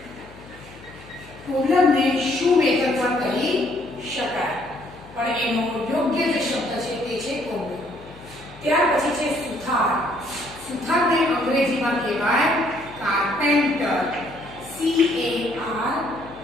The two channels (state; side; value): noise; left; hum, 20 dB below the sound